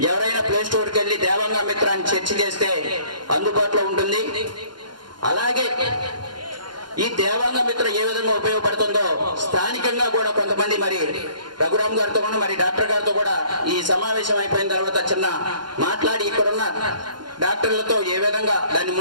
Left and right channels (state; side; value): late; left; 0.71 ms